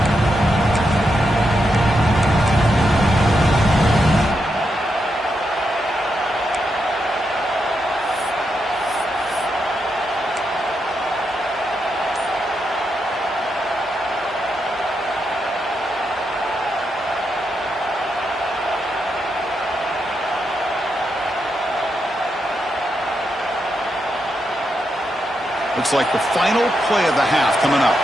Looks like the final play of the half coming up.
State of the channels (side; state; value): both; normal; correlation 0.83